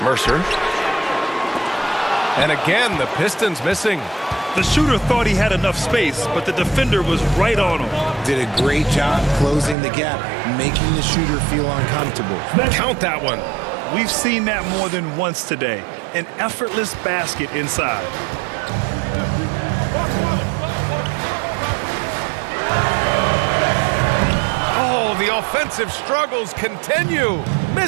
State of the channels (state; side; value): drops out; left; at 9.8 s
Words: Mercer. And again, the Pistons missing. The shooter thought he had enough space, but the defender was right on him. Did a great job closing the gap, making the shooter feel uncomfortable. Count that one. We've seen that more than once today. An effortless basket inside. Oh, the offensive struggles continue.